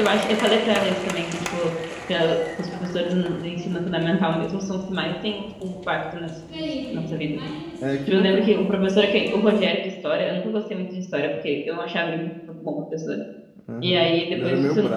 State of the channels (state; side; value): identical; both; correlation 1.00